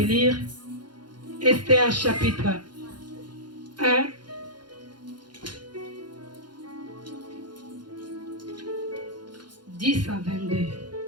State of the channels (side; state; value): left; late; 0.71 ms